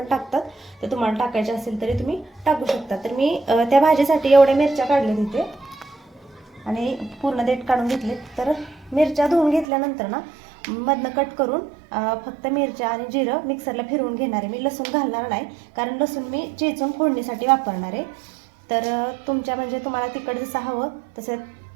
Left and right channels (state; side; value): drops out; left; at 9.7 s